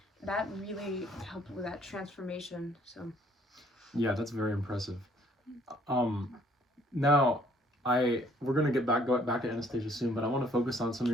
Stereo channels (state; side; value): normal; both; correlation 0.62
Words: That really helped with that transformation. So yeah, that's very impressive. Now we're gonna go back to Anastasia soon, but I want to focus on some of